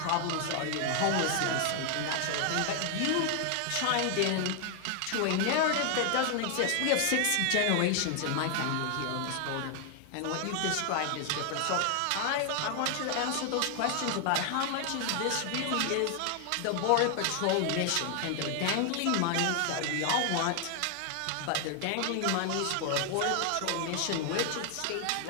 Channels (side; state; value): both; different; correlation 0.00